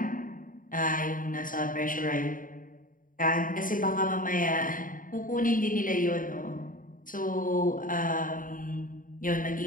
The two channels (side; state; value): right; late; 0.39 ms